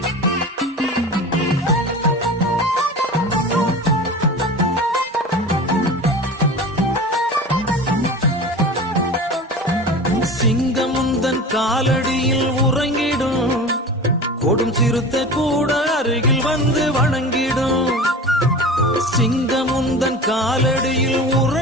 சிங்கமுந்தன் காலடியில் உறங்கிடும், கொடும் சிறுத்தை கூட அருகில் வந்து வணங்கிடும். சிங்கமுந்தன் காலடியில்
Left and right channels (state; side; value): normal; both; correlation 0.34